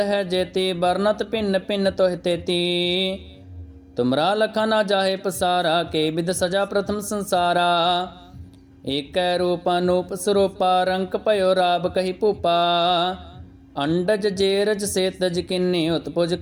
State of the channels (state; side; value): identical; both; correlation 1.00